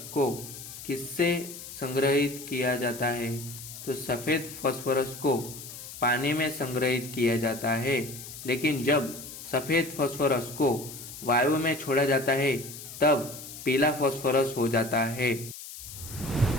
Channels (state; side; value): noise; left; hiss, 12 dB below the sound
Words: को किससे संग्रहित किया जाता है? तो सफेद फास्फोरस को पानी में संग्रहित किया जाता है, लेकिन जब सफेद फास्फोरस को वायु में छोड़ा जाता है तब पीला फास्फोरस हो जाता है।